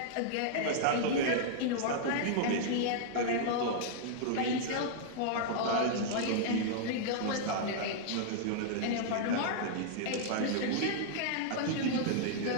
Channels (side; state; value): both; different; correlation -0.01